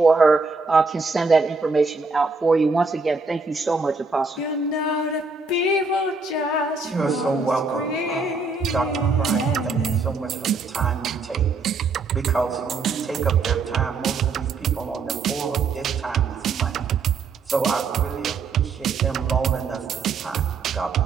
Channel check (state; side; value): quieter; left; 4.2 dB